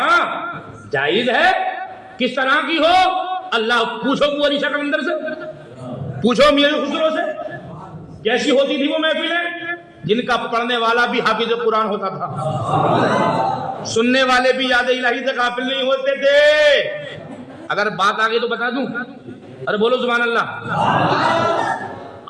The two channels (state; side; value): identical; both; correlation 1.00